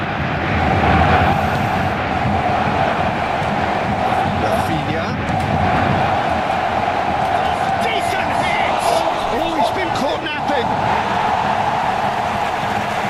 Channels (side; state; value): both; identical; correlation 1.00